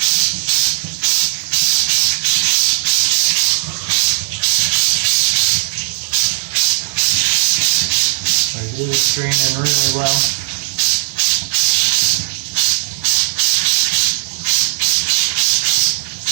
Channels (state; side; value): silent; left; digital silence